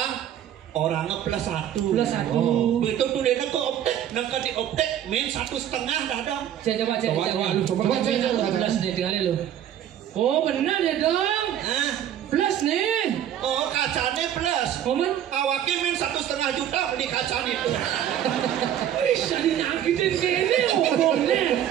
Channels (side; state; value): left; quieter; 10.6 dB